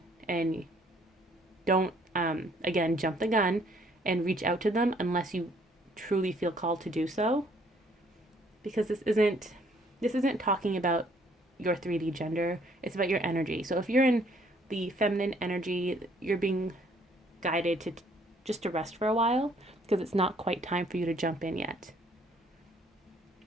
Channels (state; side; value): normal; both; correlation 0.63